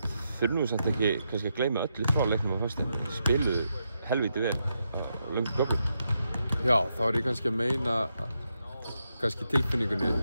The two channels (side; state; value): both; inverted; correlation -0.83